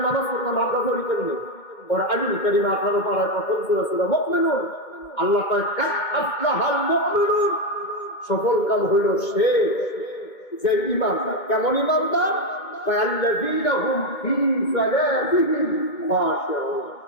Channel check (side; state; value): right; late; 2.2 ms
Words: নামাজ পড়লাম, আমরা পড়ি কেমনে? ওর আলিম কারিমা 18 পারায় প্রথম সূরা সূরা মুমিনুন, আল্লাহ কয় কাদ আফলাহাল মুমিনুন, সফল কাম হইল সে যে ঈমানদার। কেমন ঈমানদার? আল্লাযীনা হুম ফী সালাতিহিম খাশিউন,